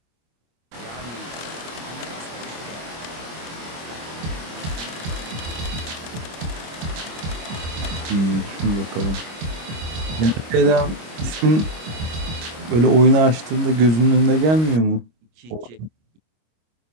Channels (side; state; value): left; late; 25 ms